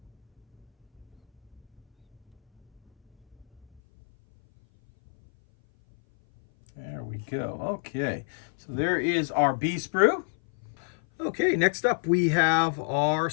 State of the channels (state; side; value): drops out; right; at 3.8 s